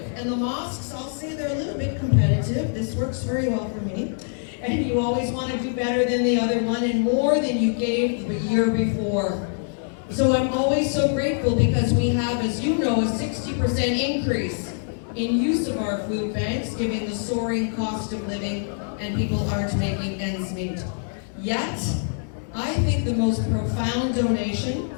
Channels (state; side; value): silent; right; digital silence